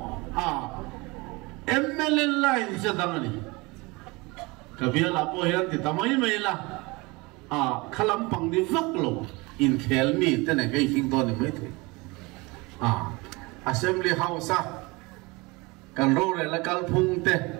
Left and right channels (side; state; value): left; quieter; 24.9 dB